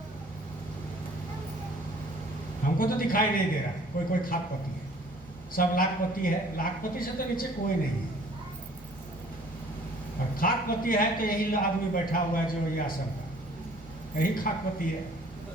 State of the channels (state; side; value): normal; both; correlation 0.54